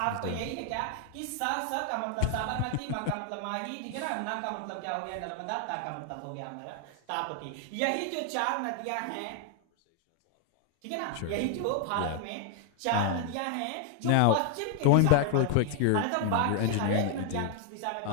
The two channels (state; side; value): different; both; correlation 0.00